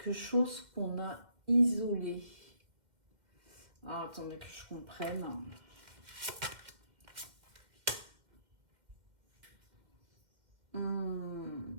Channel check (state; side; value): late; left; 2.2 ms